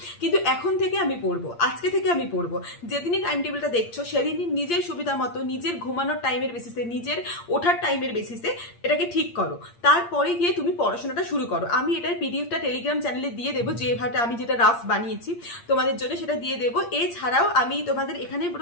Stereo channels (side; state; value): right; late; 8.6 ms